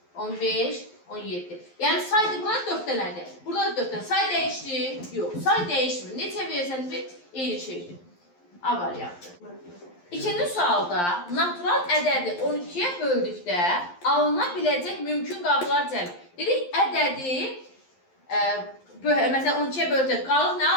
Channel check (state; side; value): late; right; 11 ms